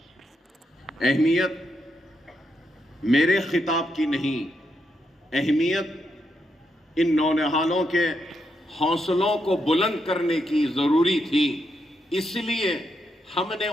اہمیت میرے خطاب کی نہیں، اہمیت ان نونہالوں کے حوصلوں کو بلند کرنے کی ضروری تھی، اس لیے ہم نے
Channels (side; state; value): both; normal; correlation 0.81